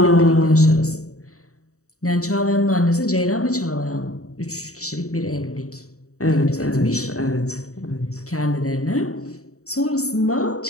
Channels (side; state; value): right; late; 0.65 ms